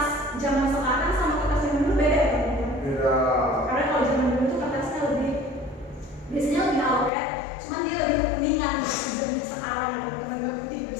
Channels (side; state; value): right; drops out; at 7.1 s